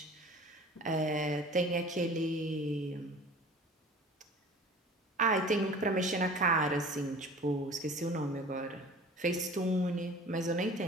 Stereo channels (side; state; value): both; normal; correlation 0.44